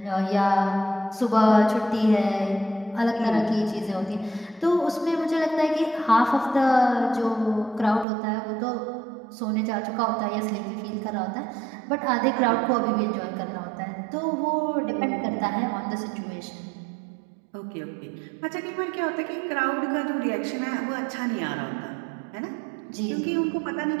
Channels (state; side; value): drops out; left; at 8.1 s